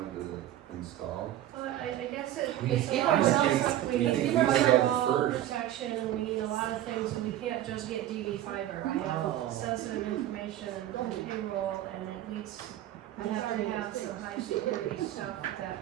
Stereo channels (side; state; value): left; quieter; 13.1 dB